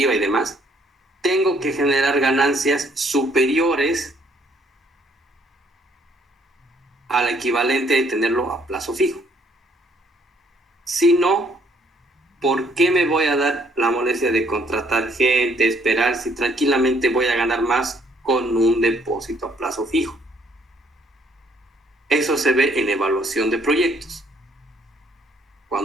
y demás, tengo que generar ganancias superiores al equivalente de tenerlo a plazo fijo. Si no, ¿por qué me voy a dar la molestia de contratar gente, esperar, si tranquilamente voy a ganar más con un depósito a plazo fijo? Eso se ve en evaluación de proyectos.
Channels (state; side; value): normal; both; correlation 0.65